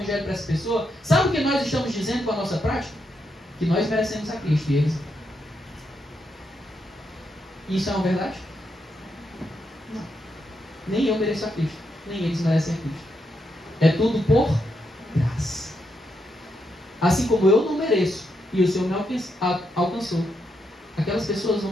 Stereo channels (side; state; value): both; normal; correlation 0.81